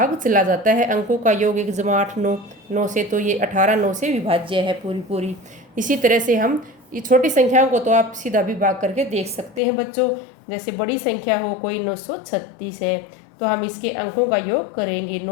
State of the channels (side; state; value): right; drops out; at 9.6 s